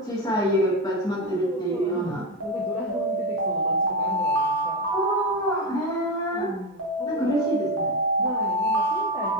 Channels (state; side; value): normal; both; correlation 0.15